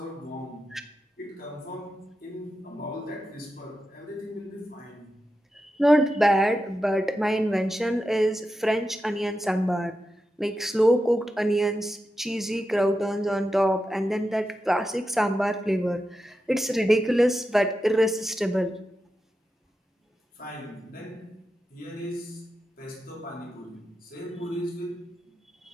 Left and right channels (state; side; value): normal; both; correlation 0.89